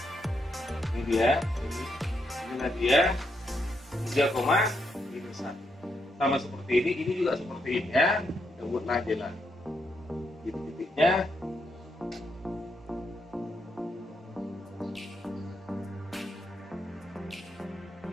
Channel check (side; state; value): both; normal; correlation 0.80